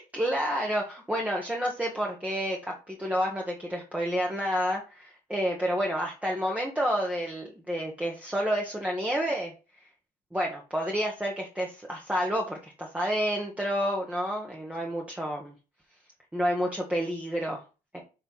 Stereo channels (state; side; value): normal; both; correlation 0.79